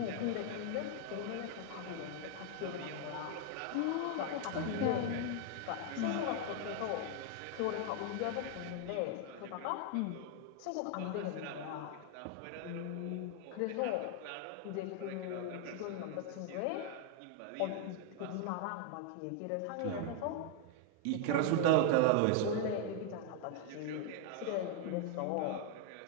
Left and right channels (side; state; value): both; different; correlation 0.00